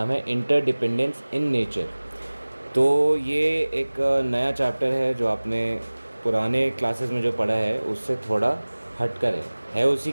है इंटरडिपेंडेंस इन नेचर। तो ये एक नया चैप्टर है जो आपने पुराने क्लासेस में जो पढ़ा है उससे थोड़ा हटकर है उसी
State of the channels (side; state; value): both; inverted; correlation -1.00